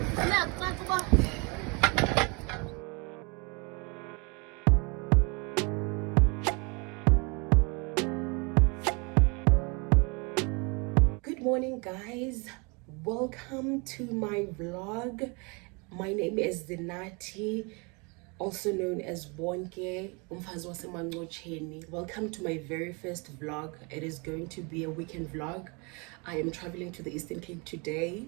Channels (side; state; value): left; quieter; 30.6 dB